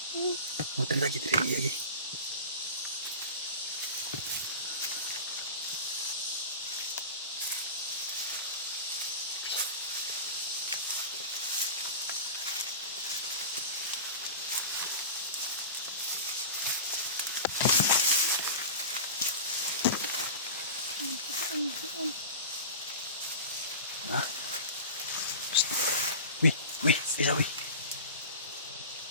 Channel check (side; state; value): both; inverted; correlation -0.31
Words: Oh, tari lagi. Hah? Wih, isa wih.